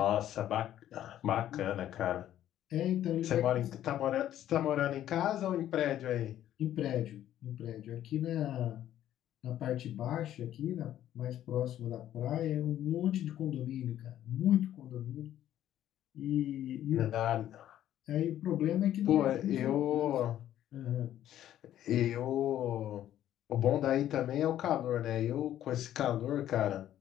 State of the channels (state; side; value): quieter; right; 11.9 dB